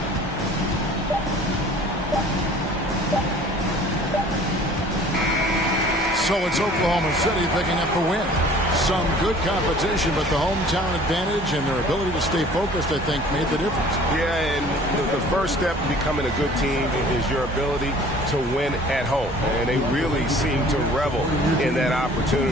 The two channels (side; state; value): both; normal; correlation 0.50